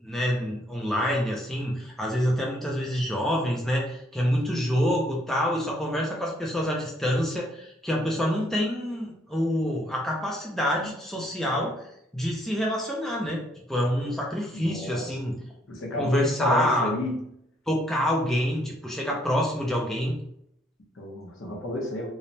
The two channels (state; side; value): normal; both; correlation 0.69